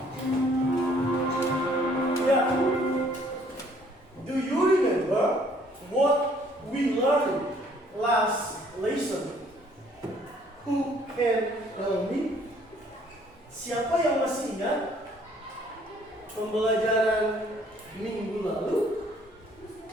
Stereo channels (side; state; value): both; normal; correlation 0.61